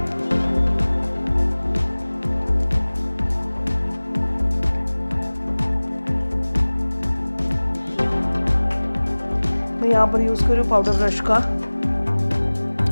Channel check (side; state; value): both; inverted; correlation -1.00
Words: मैं यहाँ पर यूज़ कर रही हूँ पाउडर ब्रश का।